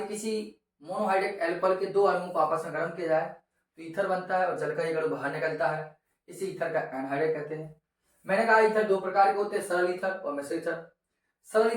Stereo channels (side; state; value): both; identical; correlation 1.00